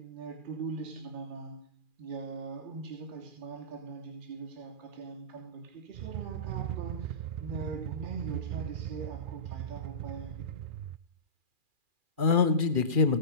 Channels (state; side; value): late; left; 2.4 ms